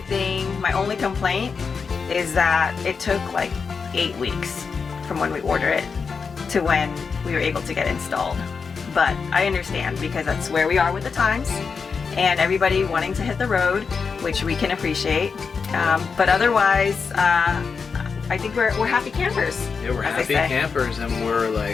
thing, my only complaint is that it took like 8 weeks from when we order it to when we were able to get installed. But I understand because that's where we are with the times and everybody wanting to hit the road, which we can appreciate. But otherwise, I think we're happy campers. Yeah, we're happy campers, and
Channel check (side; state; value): right; quieter; 5.4 dB